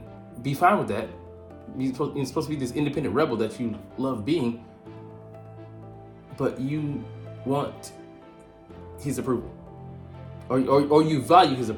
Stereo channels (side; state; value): both; identical; correlation 1.00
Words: be fine with that. You're supposed to be this independent rebel that you love being, but you want his approval, or you value his